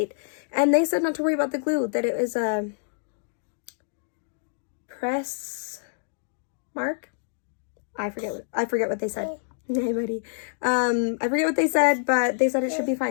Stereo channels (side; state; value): right; silent; digital silence